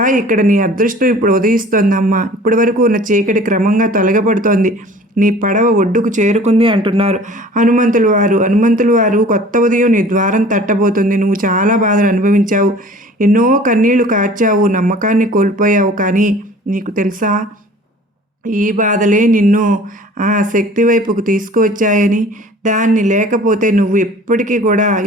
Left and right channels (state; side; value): normal; both; correlation 0.47